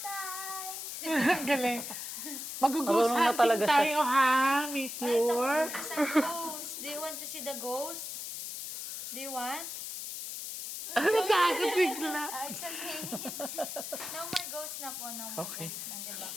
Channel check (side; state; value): left; noise; hiss, 7 dB below the sound